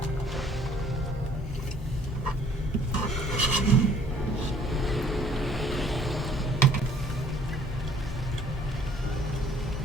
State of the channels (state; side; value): normal; both; correlation 0.58